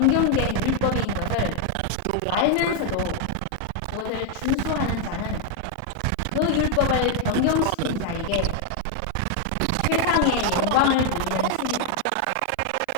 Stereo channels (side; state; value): both; different; correlation 0.00